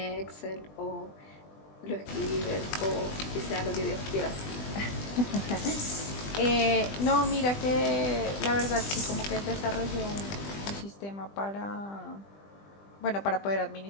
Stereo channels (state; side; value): late; right; 20 ms